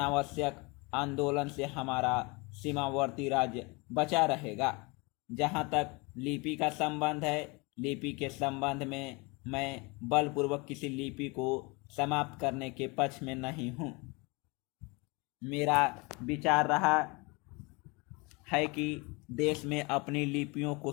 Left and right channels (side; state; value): right; quieter; 27.6 dB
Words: आंदोलन से हमारा सीमावर्ती राज्य बचा रहेगा। जहाँ तक लिपि का संबंध है, लिपि के संबंध में मैं बलपूर्वक किसी लिपि को समाप्त करने के पक्ष में नहीं हूँ। मेरा विचार रहा है कि देश में अपनी लिपियों को